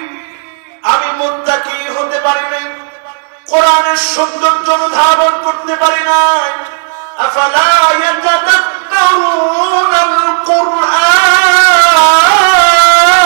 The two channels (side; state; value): left; silent; digital silence